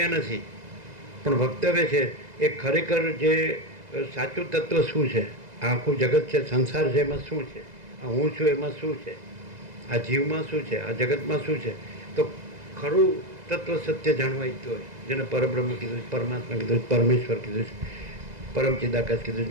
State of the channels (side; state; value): left; late; 2.0 ms